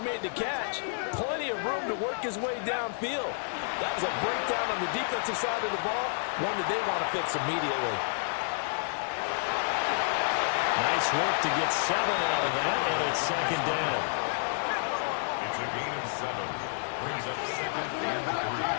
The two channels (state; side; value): silent; right; 58 dB below the other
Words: the catch, plenty of room to work his way downfield. That was a breakdown on the defensive side of the ball, one that they want to fix immediately. Nice work to get 7 out of that, and it's second down. It's a gain of 7. Brings up second and 3